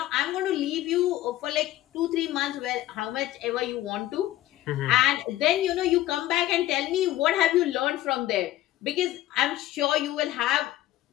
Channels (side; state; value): right; quieter; 14.6 dB